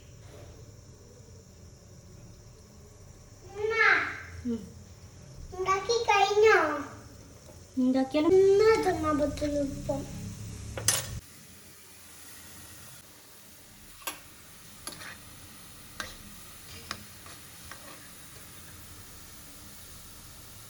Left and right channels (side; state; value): both; identical; correlation 1.00